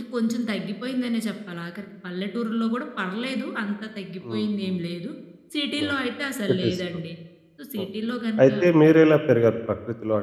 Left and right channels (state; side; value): identical; both; correlation 1.00